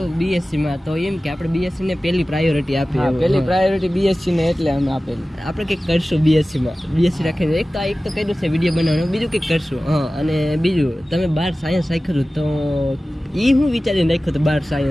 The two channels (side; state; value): both; normal; correlation 0.96